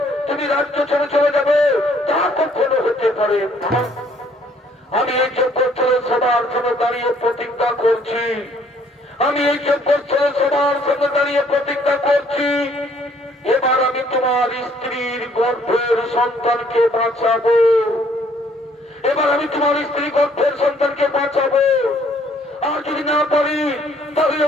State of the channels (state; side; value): normal; both; correlation 0.63